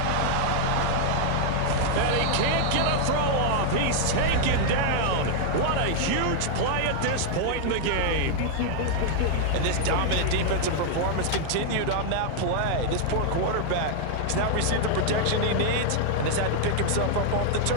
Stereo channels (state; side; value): different; both; correlation 0.00